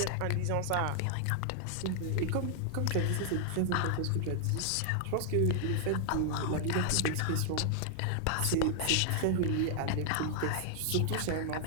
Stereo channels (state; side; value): different; both; correlation 0.00